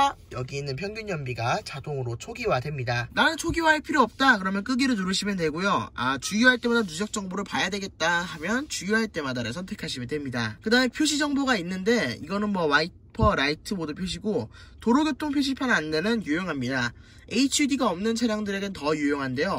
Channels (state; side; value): identical; both; correlation 1.00